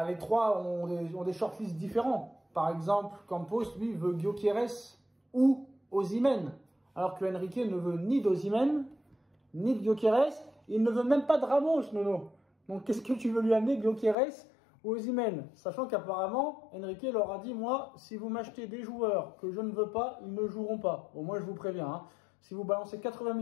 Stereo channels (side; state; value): right; drops out; at 14.2 s